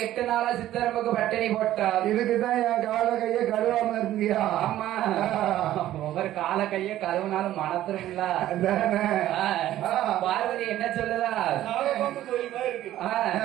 நாளா சித்தரம்புக்கு பட்டினி போட்டார். இதுக்குதான் என் கால கைய கழுவாம இருந்தியா? ஆமா, ஒவ்வொரு கால கைய கழுவுனாலும் மனத்திருங்களா? பார்வதி என்ன சொல்லுதா?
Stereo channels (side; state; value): left; quieter; 13.5 dB